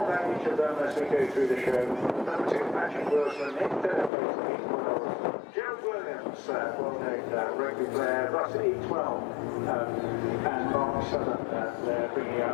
about each of them as we go through the show. Number 2, Patrick Wilson, in third place, E12. Gerald Williams, well-known rugby player, Russ E12, and Mark Southern there bringing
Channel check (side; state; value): right; drops out; at 4.1 s